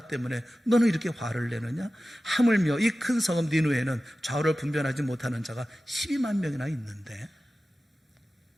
때문에 너는 이렇게 화를 내느냐? 하물며 이 큰 성읍 니느웨에는 좌우를 분별하지 못하는 자가 12만 명이나 있는데.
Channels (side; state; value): both; normal; correlation 0.95